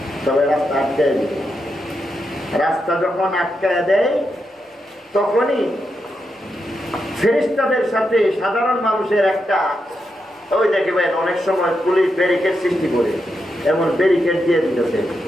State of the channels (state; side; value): normal; both; correlation 0.85